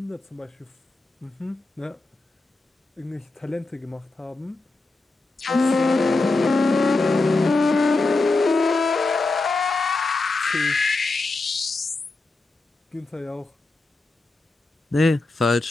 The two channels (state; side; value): quieter; right; 3.3 dB